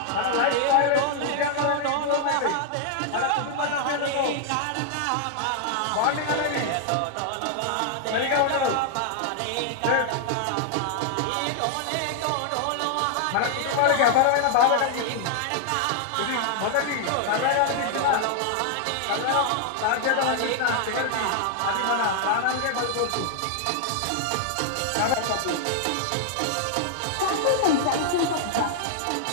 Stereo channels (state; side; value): different; both; correlation -0.01